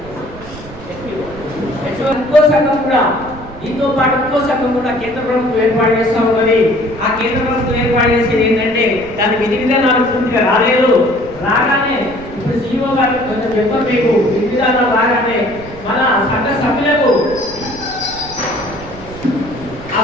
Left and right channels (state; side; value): noise; right; rumble, 16 dB below the sound